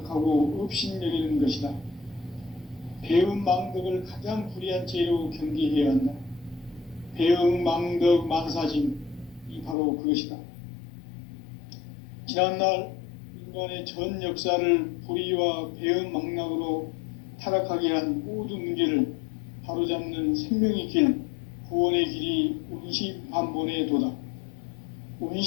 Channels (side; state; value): right; drops out; at 9.8 s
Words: 업신여기는 것이다. 배움 망덕을 가장 불의한 죄로 경계해야 한다. 배움 망덕 만사짐이 바로 그것이다. 지난날 인간의 전 역사를 불의와 배움 망락으로 타락하게 한 모든 문제를 바로잡는 생명의 길, 구원의 길이 운시반본의 도다.